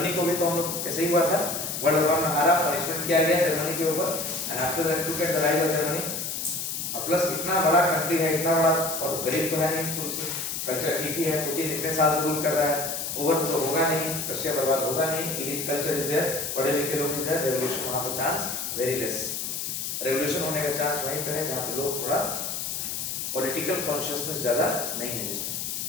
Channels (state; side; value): noise; left; hiss, 3 dB below the sound